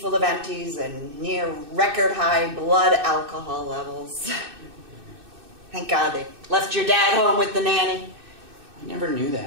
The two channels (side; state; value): left; late; 2.6 ms